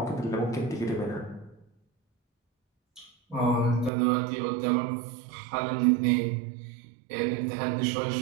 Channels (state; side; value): drops out; left; at 3.9 s